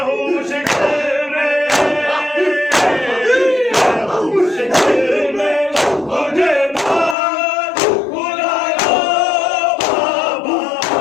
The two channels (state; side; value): drops out; right; at 7.2 s